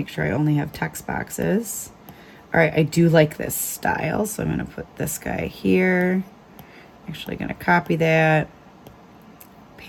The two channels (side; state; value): both; identical; correlation 1.00